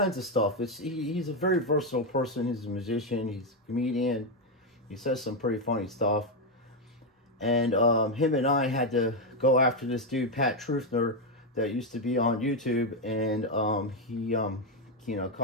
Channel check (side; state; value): both; normal; correlation 0.04